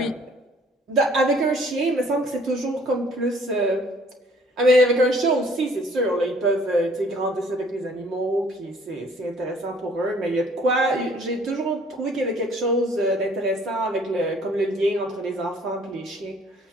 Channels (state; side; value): normal; both; correlation 0.57